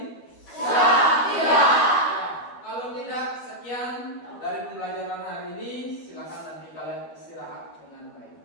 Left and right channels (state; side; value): late; right; 12 ms